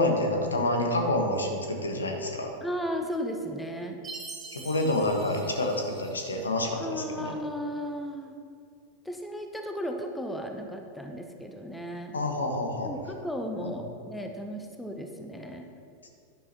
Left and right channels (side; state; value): both; normal; correlation -0.09